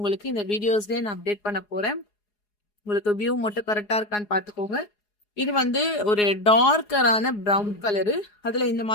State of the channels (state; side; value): late; right; 4.8 ms